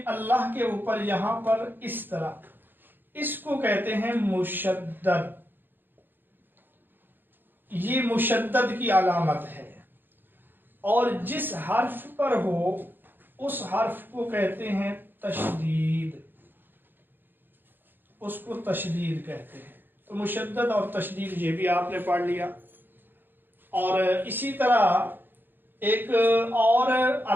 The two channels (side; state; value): left; late; 0.095 ms